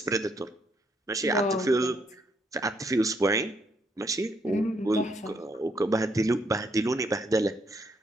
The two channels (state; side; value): normal; both; correlation 0.73